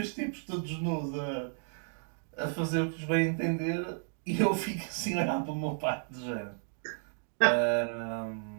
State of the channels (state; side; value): silent; left; 56 dB below the other